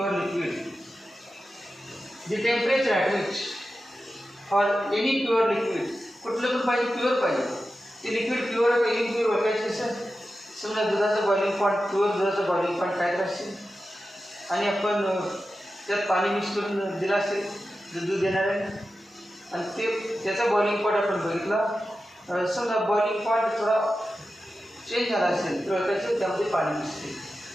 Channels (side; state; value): both; normal; correlation 0.92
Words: liquid the temperature at which for any pure liquid कुठलं पण पाहिजे प्युअर पाहिजे ते लिक्विड प्युअर आहे इम्प्युअर ओळखायचं कसं समजा दुधाचं बॉइलिंग पॉईंट प्युअर दुधाचं बॉइलिंग पॉईंट काय असेल आणि आपण त्यात पाणी मिक्स करून दिलं असेल दूध देणार आहे आणि ते त्याचा बॉइलिंग पॉईंट आपण बघितला समजा बॉइलिंग पॉईंट थोडा चेंज झाला असेल तर त्याचं त्यामध्ये पाणी मिसते